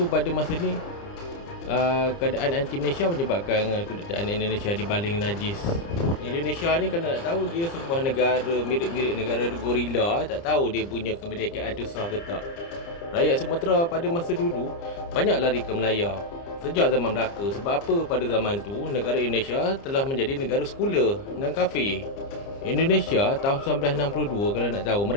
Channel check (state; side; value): late; right; 30 ms